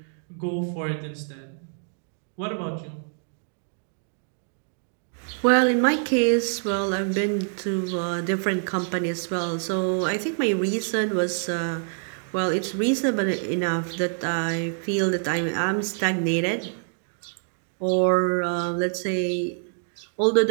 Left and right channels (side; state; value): left; silent; 59 dB below the other